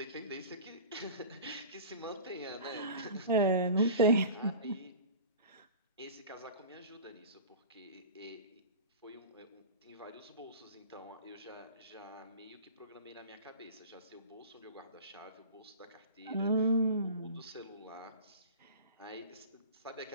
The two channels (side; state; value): both; inverted; correlation -0.37